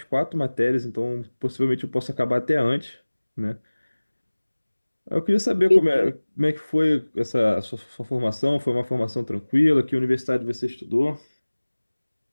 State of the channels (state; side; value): inverted; both; correlation -1.00